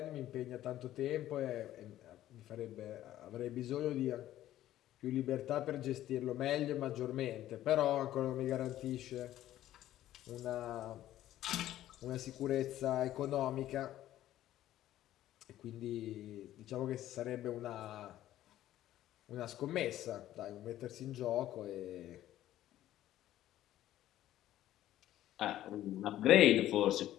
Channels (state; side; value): quieter; right; 13.4 dB